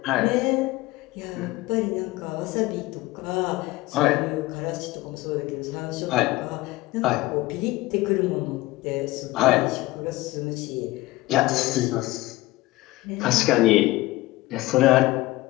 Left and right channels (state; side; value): quieter; right; 19.1 dB